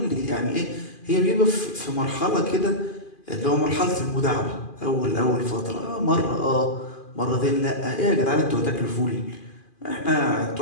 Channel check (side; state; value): right; late; 2.4 ms